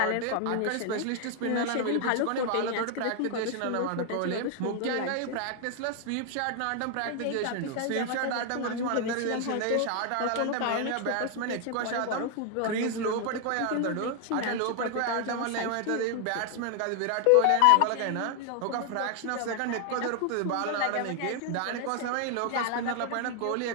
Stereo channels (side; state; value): both; different; correlation 0.00